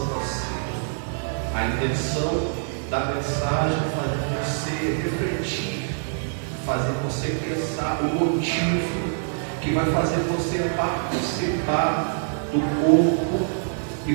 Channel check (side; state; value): left; silent; digital silence